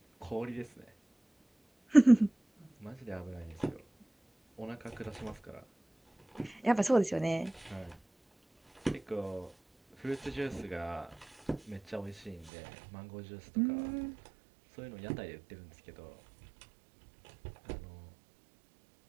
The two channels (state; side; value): drops out; left; at 12.5 s